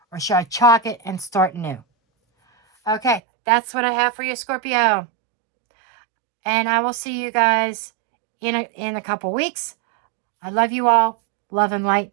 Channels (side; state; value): left; drops out; at 3.2 s